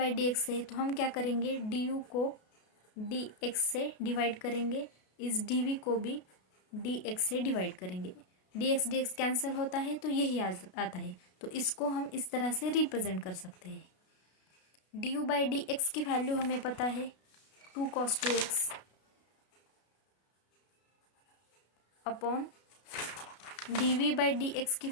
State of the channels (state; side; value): late; right; 33 ms